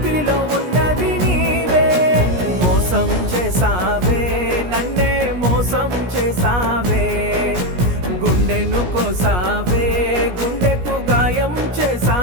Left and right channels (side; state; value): left; late; 17 ms